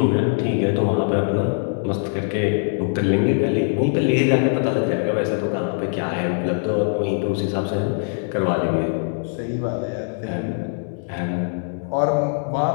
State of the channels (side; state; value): right; silent; 64 dB below the other